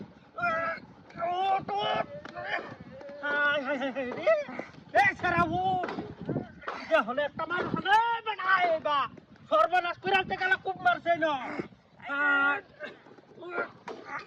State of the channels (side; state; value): both; identical; correlation 1.00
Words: হলে একটা মানুষ সর্বনাশ করে আনতে গেলে খুব মারছে না